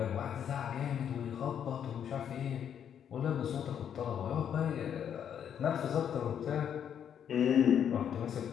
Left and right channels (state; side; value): quieter; right; 8.8 dB